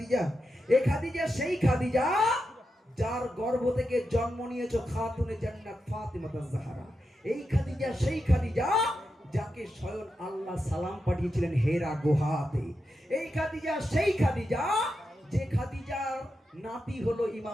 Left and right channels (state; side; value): normal; both; correlation 0.87